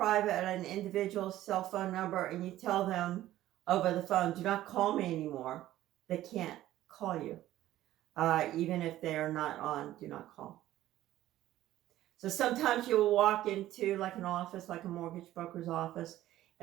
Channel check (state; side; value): quieter; left; 14.2 dB